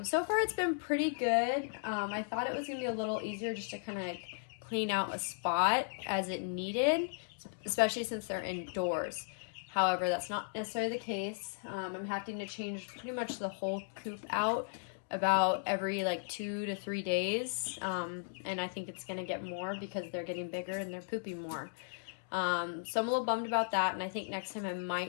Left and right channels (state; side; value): silent; right; digital silence